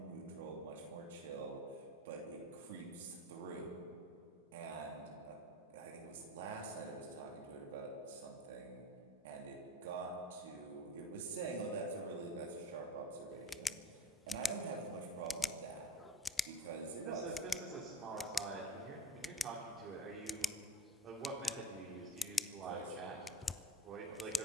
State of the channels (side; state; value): both; normal; correlation 0.34